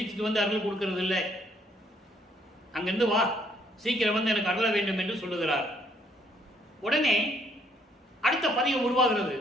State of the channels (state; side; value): normal; both; correlation 0.67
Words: வந்து அருள் கொடுக்கறது இல்லை. அங்கிருந்து வா, சீக்கிரம் வந்து எனக்கு அருள வேண்டும் என்று சொல்லுகிறார். உடனே அடுத்த பதிகம் உருவாகிறது.